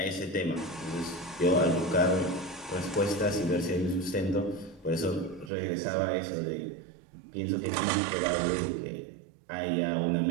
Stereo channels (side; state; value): left; drops out; at 5.5 s